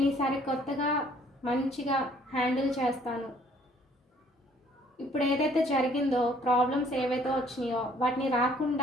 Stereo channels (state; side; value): normal; both; correlation 0.60